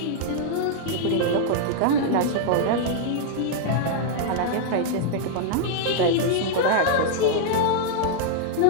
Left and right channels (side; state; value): both; different; correlation -0.01